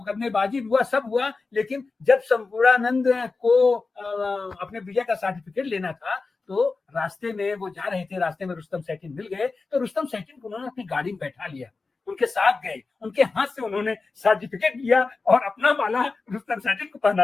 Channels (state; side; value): quieter; right; 4.0 dB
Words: हुआ, सब हुआ। लेकिन जब संपूर्णानंद को अपने विजय का सर्टिफिकेट लेना था तो रास्ते में वो जा रहे थे, रास्ते में रुस्तम सैटिन मिल गए, तो रुस्तम सैटिन को उन्होंने अपनी गाड़ी में बैठा लिया, उनके साथ गए, उनके हाथ से उन्होंने सर्टिफिकेट लिया और अपना माला रुस्तम सैटिन को